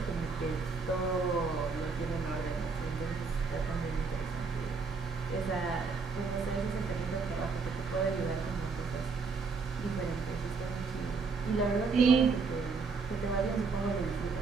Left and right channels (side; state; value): left; quieter; 4.6 dB